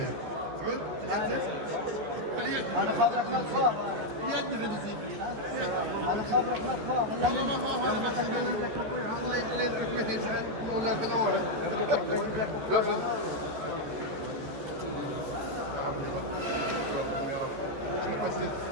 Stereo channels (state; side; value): late; left; 14 ms